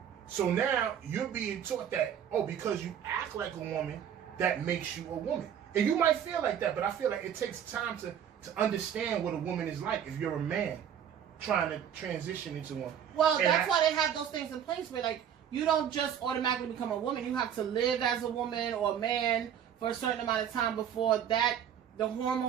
So now you're being taught that, because you act like a woman, that makes you a woman. And you might feel like that, but I feel like it takes time to understand what a woman is like if you're a man trying to transition into one. Well, that's why they have those things in place where, like, you don't just automatically become a woman. You have to live as a woman or a man for a certain amount of time before the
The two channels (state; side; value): quieter; left; 9.0 dB